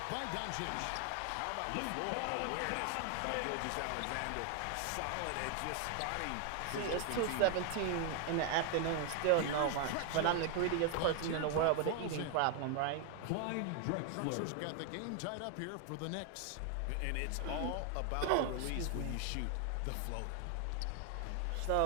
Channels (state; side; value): different; both; correlation 0.00